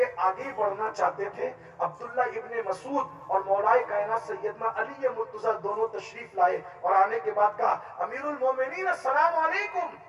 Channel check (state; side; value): identical; both; correlation 1.00